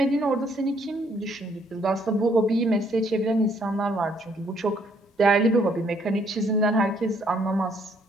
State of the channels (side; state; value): both; normal; correlation 0.67